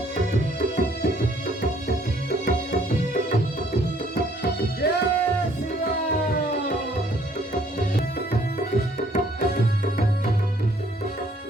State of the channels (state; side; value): normal; both; correlation 0.63